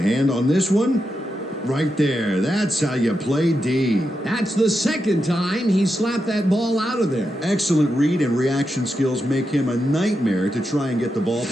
on this one. Right there. That's how you play D. That's the second time he slapped that ball out of there. Excellent read and reaction skills make him a nightmare to try and get the ball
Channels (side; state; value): both; normal; correlation 0.87